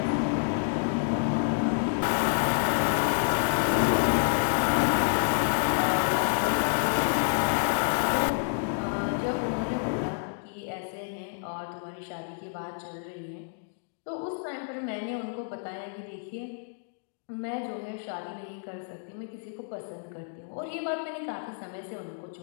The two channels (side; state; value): right; silent; digital silence